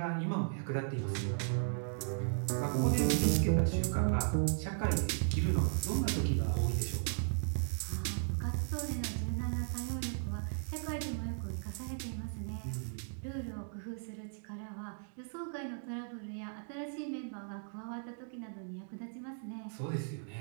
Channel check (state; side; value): silent; left; digital silence